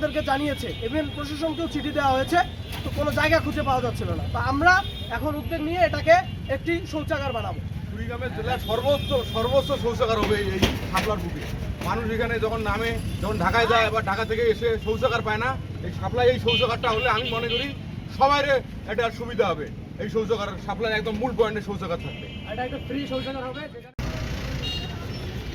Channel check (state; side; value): identical; both; correlation 1.00